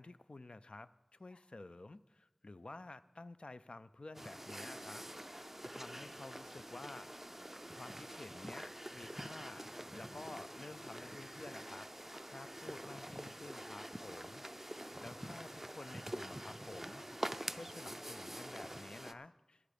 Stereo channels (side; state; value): both; normal; correlation 0.95